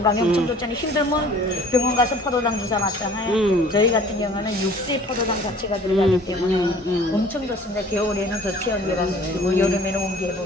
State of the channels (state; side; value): normal; both; correlation 0.50